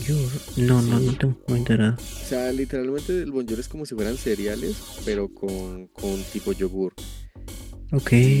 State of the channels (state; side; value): identical; both; correlation 1.00